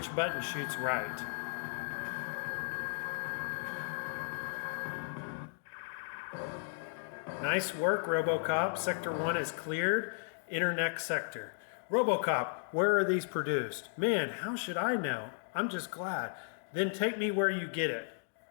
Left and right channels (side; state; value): right; silent; digital silence